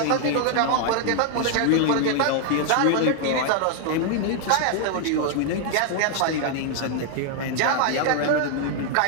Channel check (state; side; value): different; both; correlation 0.00